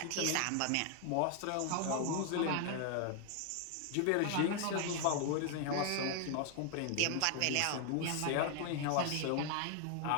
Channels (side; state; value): both; different; correlation 0.00